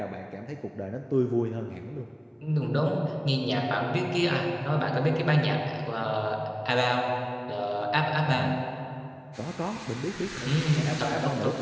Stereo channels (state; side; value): identical; both; correlation 1.00